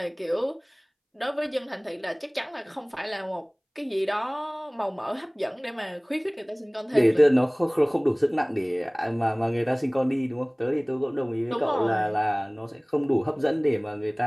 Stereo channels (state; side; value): identical; both; correlation 1.00